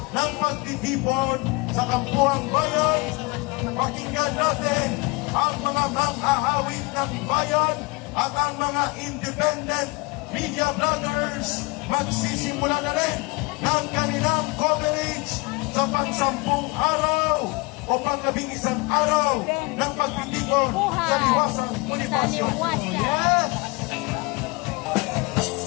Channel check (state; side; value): quieter; right; 26.1 dB